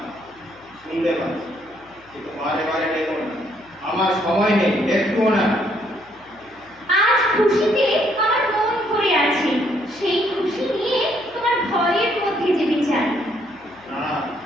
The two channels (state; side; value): noise; left; hum, 30 dB below the sound